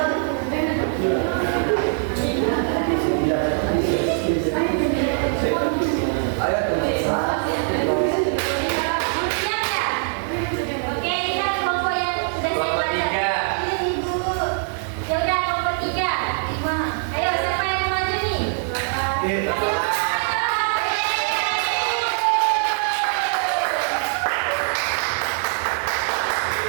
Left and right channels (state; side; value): silent; left; 59 dB below the other